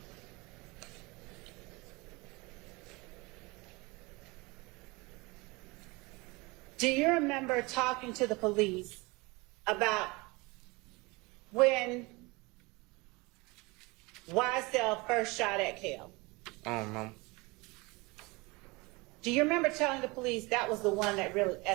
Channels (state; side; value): quieter; left; 25.0 dB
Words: Do you remember talking to the police about when YSL first shot at Kel? I don't know. Do you remember telling the police that was the one that really